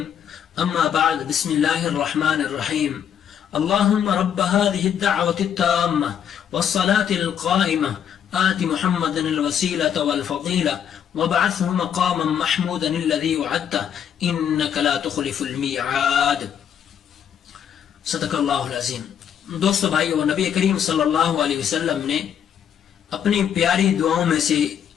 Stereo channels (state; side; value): quieter; right; 8.8 dB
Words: أما بعد بسم الله الرحمن الرحيم اللهم رب هذه الدعوة التامة والصلاة القائمة آت محمدا الوسيلة والفضيلة وابعثه مقاما محمودا الذي وعدته إنك لا تخلف الميعاد صدق اللہ العظیم۔ دوستو بھائیو، نبی کریم صلی اللہ علیہ وسلم نے اپنی پیاری دعاؤں میں سے